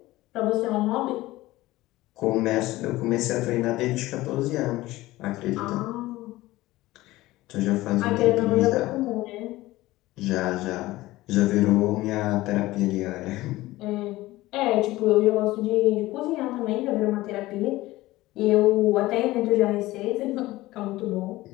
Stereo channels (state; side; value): quieter; right; 17.9 dB